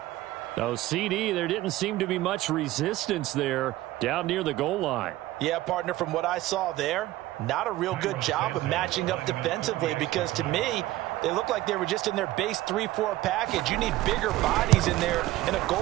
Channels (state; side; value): quieter; left; 16.3 dB